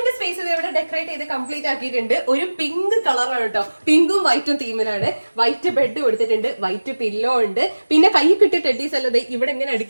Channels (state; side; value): inverted; both; correlation -1.00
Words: സ്പേസ് ഇവിടെ ഡെക്കറേറ്റ് ചെയ്ത് കംപ്ലീറ്റ് ആക്കിയിട്ടുണ്ട്. ഒരു പിങ്ക് കളറാണ് കേട്ടോ. പിങ്കും വൈറ്റും തീമിലാണ്. വൈറ്റ് ബെഡ് കൊടുത്തിട്ടുണ്ട്, വൈറ്റ് പില്ലോ ഉണ്ട്. പിന്നെ കൈ കിട്ടിയ ടെഡീസ് അല്ലത് ഇവിടെ ഇങ്ങനെ